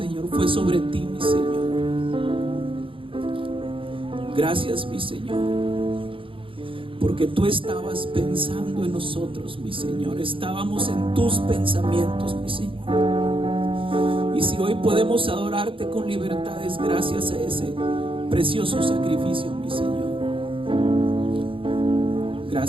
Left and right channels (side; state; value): left; late; 0.25 ms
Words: fue sobre ti, mi Señor. Gracias, mi Señor, porque tú estabas pensando en nosotros, mi Señor. Estábamos en tus pensamientos, mi Señor. Y si hoy podemos adorarte con libertad, es gracias a ese precioso sacrificio, mi Señor.